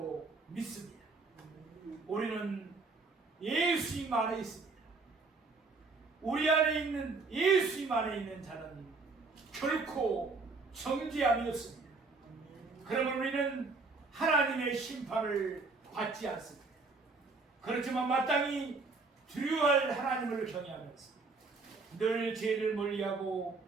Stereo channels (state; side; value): quieter; left; 3.9 dB